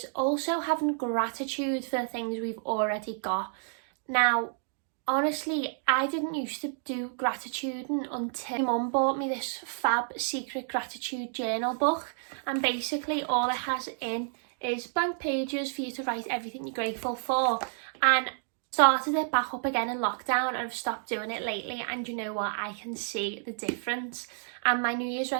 also having gratitude for the things we've already got. Now, honestly, I didn't used to do gratituding until my mum bought me this fab secret gratitude journal book, and basically all it has in is blank pages for you to write everything you're grateful for. And started it back up again in lockdown, and I've stopped doing it lately, and you know what, I can see the difference. And my New Year's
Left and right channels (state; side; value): silent; left; digital silence